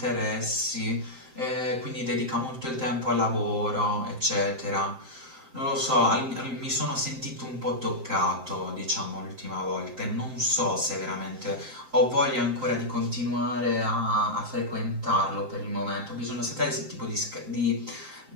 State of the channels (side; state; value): left; late; 7.7 ms